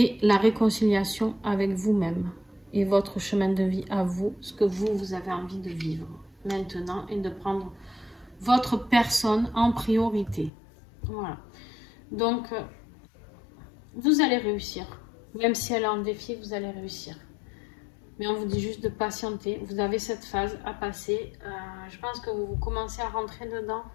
la réconciliation avec vous-même. Et votre chemin de vie à vous, ce que vous avez envie de vivre maintenant. Et de prendre votre personne en priorité. Voilà. Donc, vous allez réussir. Même si elle est en défi, vous allez réussir. Mais on vous dit juste de patienter. Vous avez cette phase à passer. Je pense que vous commencez à rentrer dedans.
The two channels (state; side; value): drops out; right; at 10.5 s